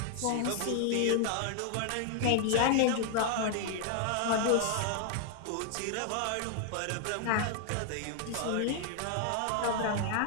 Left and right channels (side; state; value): both; different; correlation 0.00